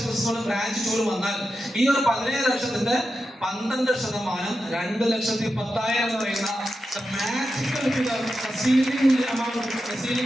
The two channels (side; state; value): both; normal; correlation 0.90